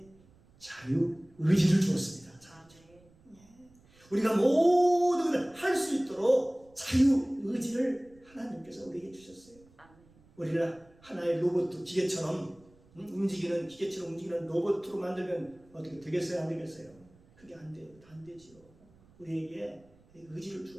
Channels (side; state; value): right; noise; rumble, 28 dB below the sound